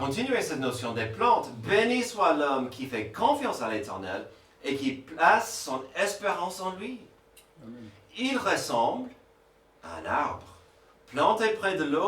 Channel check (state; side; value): identical; both; correlation 1.00